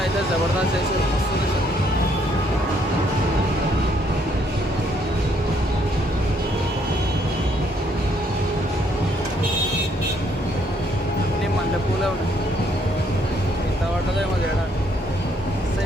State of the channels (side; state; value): both; normal; correlation 0.69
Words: జబర్దస్త్ చేసి వస్తుంది సార్. అన్నీ మల్లె పూలే ఉన్నాయి. ఇంత పడ్డదేమో చేయడానికి.